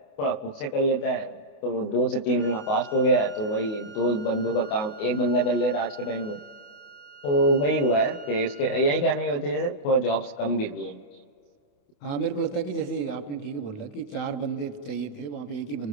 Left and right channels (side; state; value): right; late; 28 ms